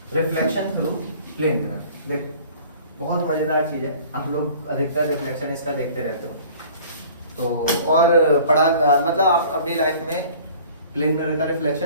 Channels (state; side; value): inverted; both; correlation -0.49